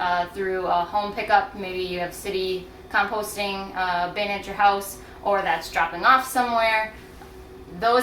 through a home pickup, maybe you have city composting bin at your house, or that's dropping off somewhere.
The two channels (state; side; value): identical; both; correlation 1.00